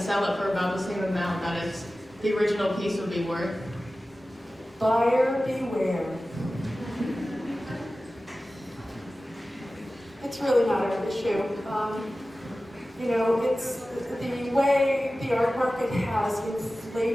it for about the same amount that the original piece would be worth? Buyer beware. It's really not our issue. It's the way the art market has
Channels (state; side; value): normal; both; correlation 0.96